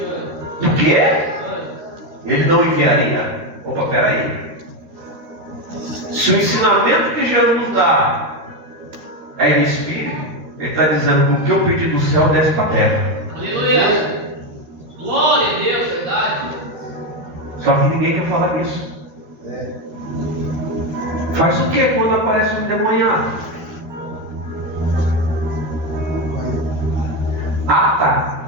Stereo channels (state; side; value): late; left; 13 ms